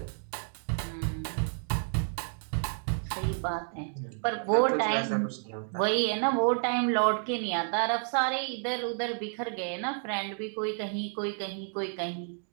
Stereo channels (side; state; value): left; silent; 57 dB below the other